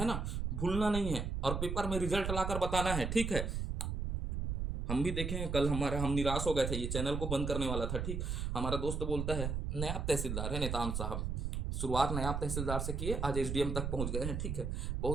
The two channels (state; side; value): noise; right; rumble, 2 dB below the sound